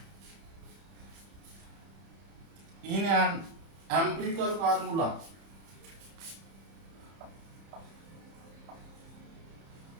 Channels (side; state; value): left; late; 30 ms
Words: in an empirical formula.